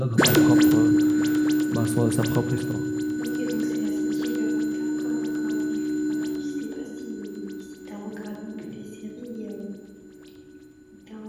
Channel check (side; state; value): both; identical; correlation 1.00